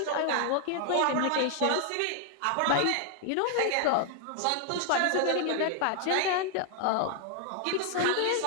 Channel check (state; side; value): different; both; correlation 0.00